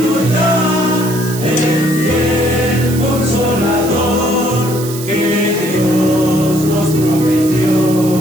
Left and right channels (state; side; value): noise; right; hiss, 11 dB below the sound